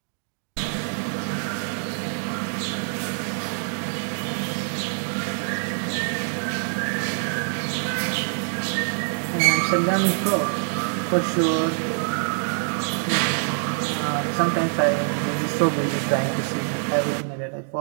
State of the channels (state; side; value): silent; left; 61 dB below the other